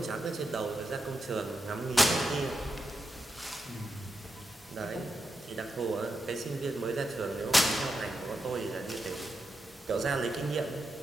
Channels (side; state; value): both; normal; correlation 0.86